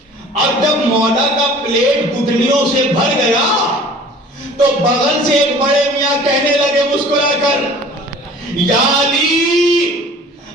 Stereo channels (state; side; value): normal; both; correlation 0.47